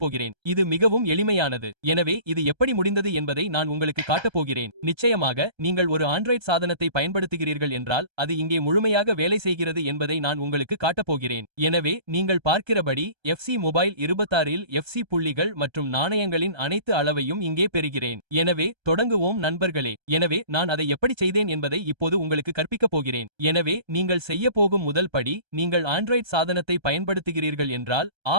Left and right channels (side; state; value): left; late; 1.3 ms